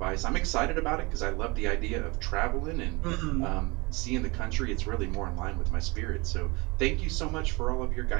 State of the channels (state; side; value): quieter; left; 26.0 dB